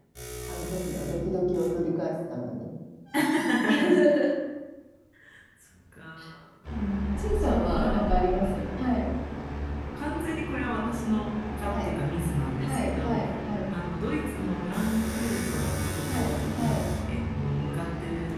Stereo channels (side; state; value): both; identical; correlation 1.00